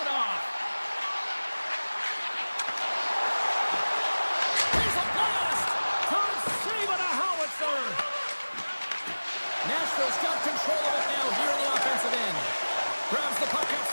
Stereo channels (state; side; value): inverted; both; correlation -1.00